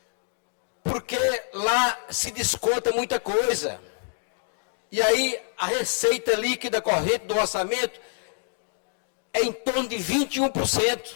Porque lá se desconta muita coisa. E aí a receita líquida corrente do orçamento é em torno de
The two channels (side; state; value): right; silent; digital silence